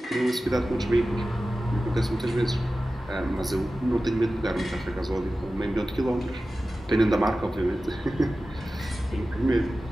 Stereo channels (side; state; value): both; normal; correlation 0.95